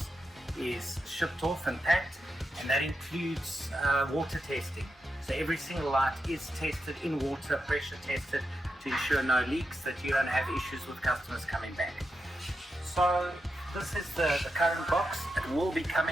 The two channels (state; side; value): normal; both; correlation 0.88